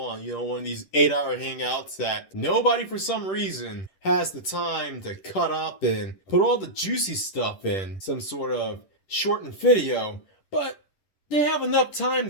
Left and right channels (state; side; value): late; right; 10 ms